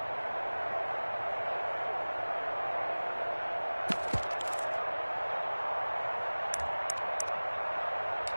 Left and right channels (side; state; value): both; inverted; correlation -1.00